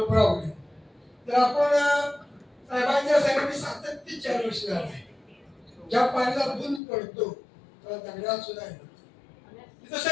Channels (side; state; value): right; drops out; at 6.8 s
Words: प्रॉब्लेम. तर आपण साहेबांच्या सांगितले सातत्य 4 वर्ष झालं आहे. ज्या पाण्याला बुंद पडतो तेव्हा दगडात सुद्धा येतो. तिथं